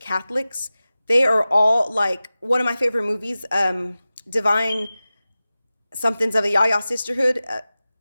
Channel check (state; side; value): inverted; both; correlation -0.96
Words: Catholics. They are all like, one of my favorite movies, Divine Somethings of a Yaya Sisterhood.